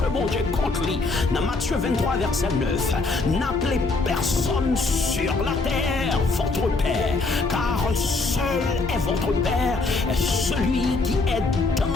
bon Dieu contre lui. Dans Matthieu 23, verset 9, n'appelez personne sur la terre votre père, car seul est votre père, celui qui est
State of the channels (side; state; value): right; quieter; 3.6 dB